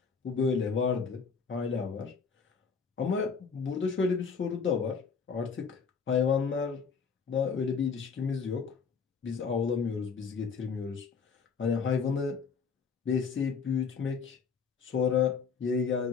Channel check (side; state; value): right; quieter; 5.7 dB